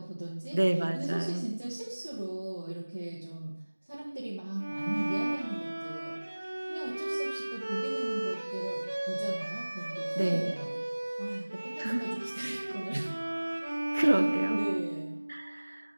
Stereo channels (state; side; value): inverted; both; correlation -1.00